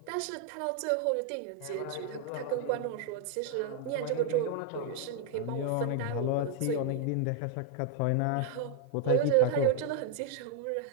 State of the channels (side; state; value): both; different; correlation 0.00